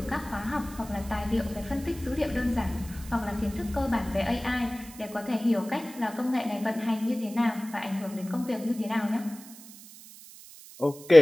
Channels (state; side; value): noise; right; hiss, 18 dB below the sound